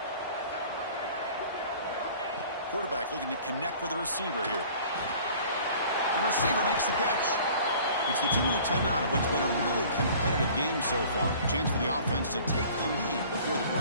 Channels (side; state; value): both; inverted; correlation -0.48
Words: Quarterback looking to connect with the receiver here. The receiver makes the catch. It's the 2-minute timeout of what's been a really competitive game so far. Chance for the offense to take the lead before the